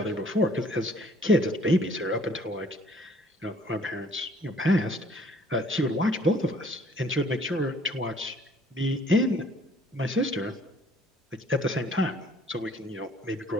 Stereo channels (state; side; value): normal; both; correlation 0.58